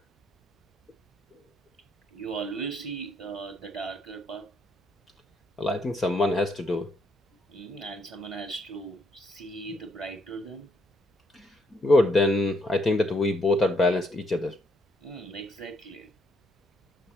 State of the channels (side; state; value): both; normal; correlation 0.72